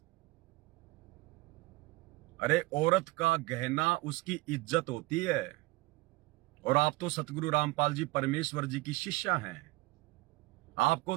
अरे औरत का गहना उसकी इज्जत होती है, और आप तो सतगुरु रामपाल जी परमेश्वर जी की शिष्या हैं। आपको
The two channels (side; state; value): left; quieter; 22.3 dB